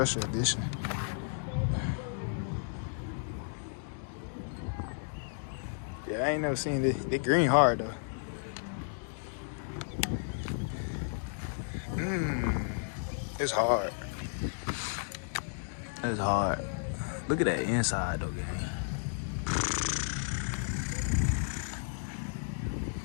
edition. Yeah, I ain't never seen this. They green hard though. It's hard. It's hard. Look at that inside though, gang.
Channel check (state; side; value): silent; right; digital silence